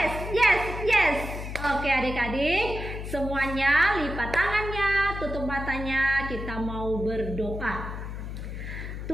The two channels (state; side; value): noise; left; hum, 7 dB below the sound